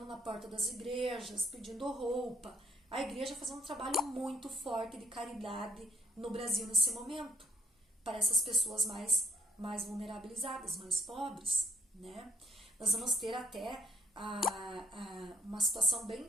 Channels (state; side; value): normal; both; correlation 0.69